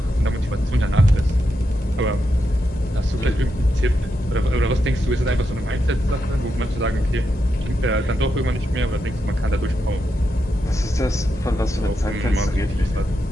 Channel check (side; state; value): both; normal; correlation 0.85